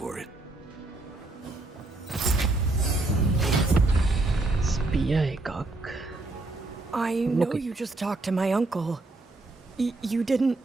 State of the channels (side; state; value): left; quieter; 3.0 dB